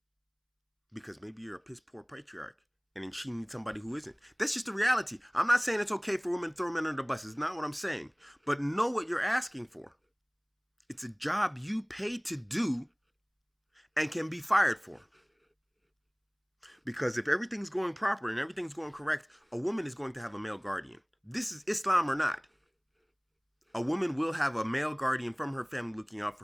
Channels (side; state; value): both; identical; correlation 1.00